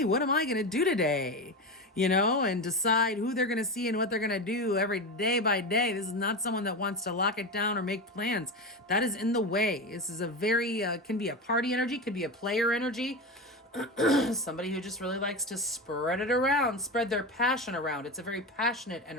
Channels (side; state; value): both; normal; correlation 0.21